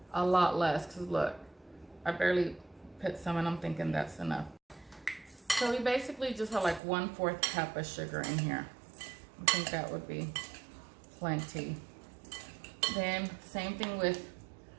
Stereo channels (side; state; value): left; drops out; at 6.8 s